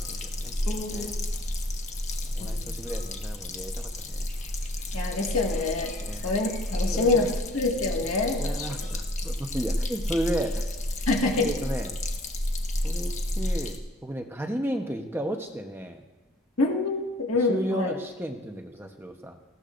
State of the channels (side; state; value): both; normal; correlation 0.55